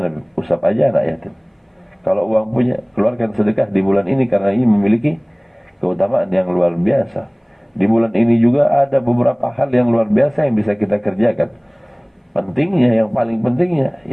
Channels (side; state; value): both; identical; correlation 1.00